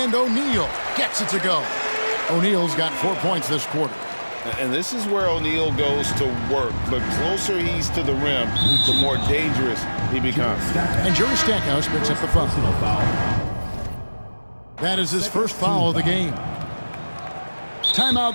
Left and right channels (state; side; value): inverted; both; correlation -1.00